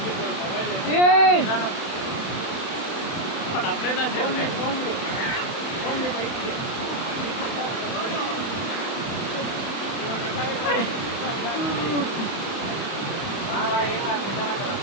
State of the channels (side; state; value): right; late; 31 ms